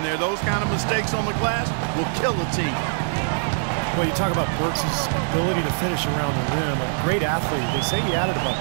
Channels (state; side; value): silent; left; digital silence